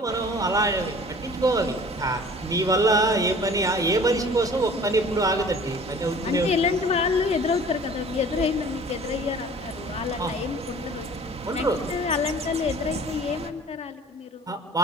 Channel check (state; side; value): normal; both; correlation 0.47